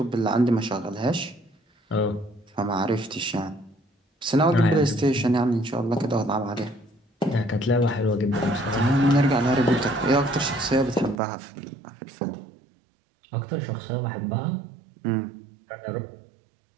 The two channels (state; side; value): drops out; left; at 11.2 s